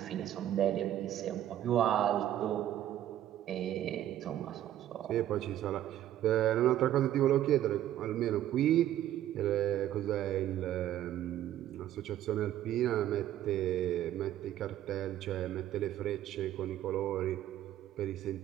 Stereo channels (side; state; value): left; quieter; 12.4 dB